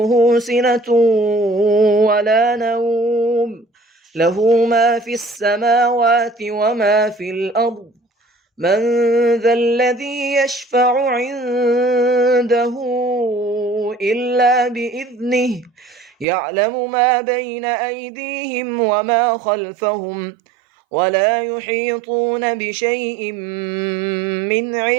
سنة ولا نوم له ما في السماوات وما في الأرض من ذا الذي يشفع عنده إلا بإذنه يعلم ما بين أيديهم وما خلفهم ولا يحيطون بشيء من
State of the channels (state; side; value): drops out; left; at 16.2 s